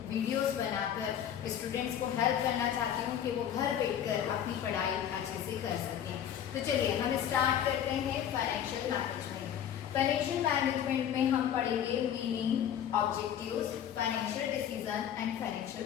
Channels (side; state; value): right; quieter; 9.6 dB